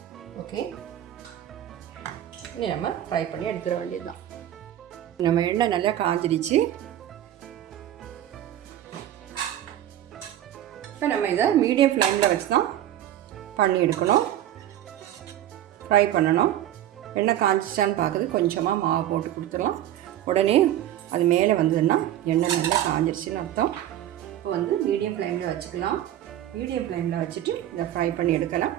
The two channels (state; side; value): quieter; left; 12.2 dB